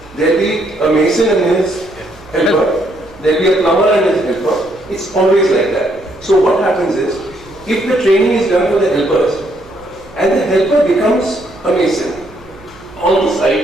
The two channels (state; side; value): noise; right; hum, 25 dB below the sound